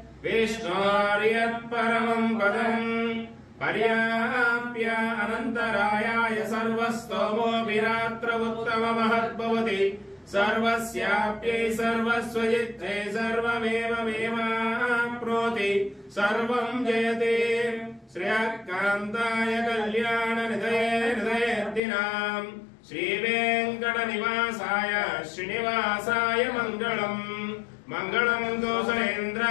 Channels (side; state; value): right; drops out; at 21.8 s